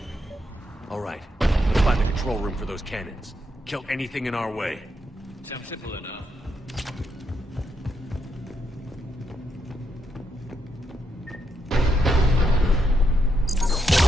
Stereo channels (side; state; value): both; normal; correlation 0.80